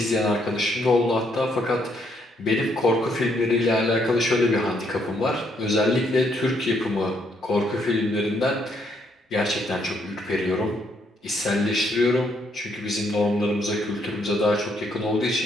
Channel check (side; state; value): both; normal; correlation 0.72